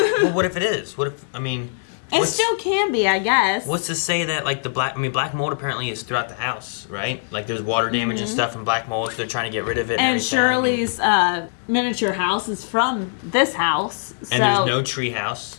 What if it is? What if, I mean... It still can be, I guess. What's to say that, like, black mold apparently is throughout the house, right? Like, there's water damage and stuff from black mold, so they're trying to get rid of it. And Shirley's miniature house is from this house. And there's no tree house.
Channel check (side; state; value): right; silent; digital silence